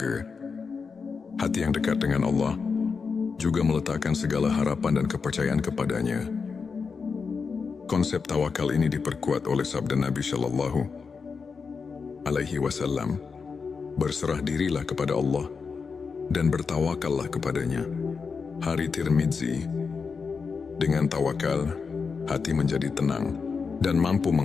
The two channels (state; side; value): quieter; right; 5.3 dB